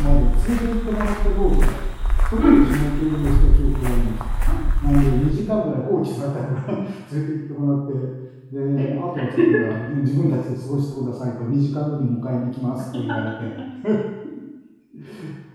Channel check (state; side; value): identical; both; correlation 1.00